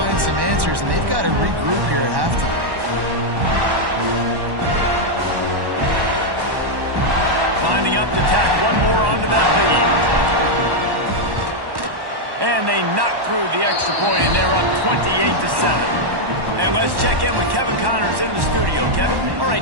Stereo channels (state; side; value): late; left; 1.1 ms